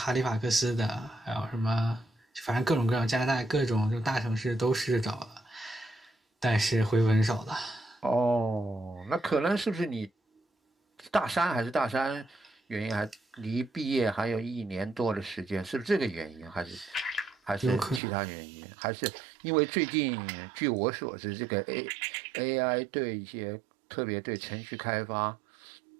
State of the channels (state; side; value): drops out; left; at 18.0 s